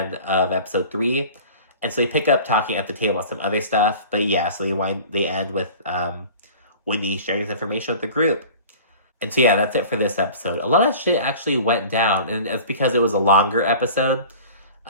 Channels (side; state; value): both; inverted; correlation -0.42